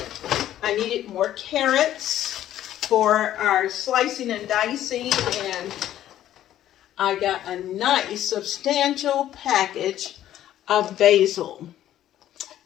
I needed more carrots for our slicing and dicing, and I got a nice substantial package of basil.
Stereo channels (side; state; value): right; quieter; 12.3 dB